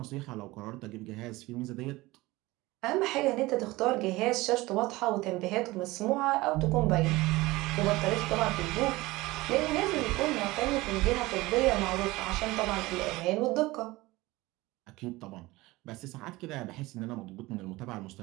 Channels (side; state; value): left; quieter; 20.3 dB